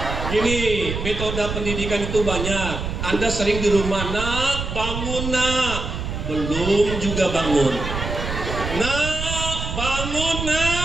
Gini, metode pendidikan itu banyak. Anda sering di rumah, nak bangun nak, belum juga bangun. Nak bangun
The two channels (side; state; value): right; noise; rumble, 5 dB below the sound